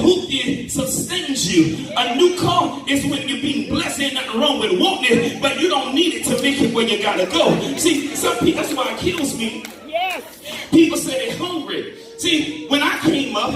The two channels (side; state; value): both; identical; correlation 1.00